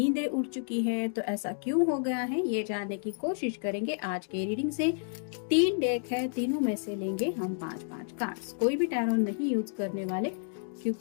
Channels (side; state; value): right; silent; digital silence